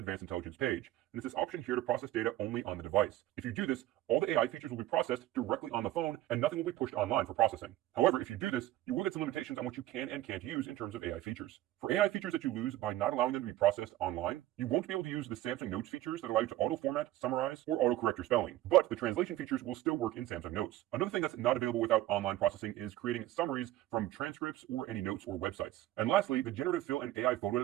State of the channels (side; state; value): left; quieter; 15.0 dB